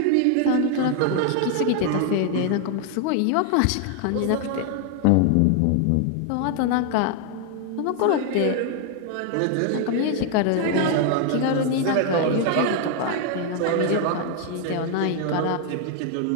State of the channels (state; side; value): different; both; correlation 0.00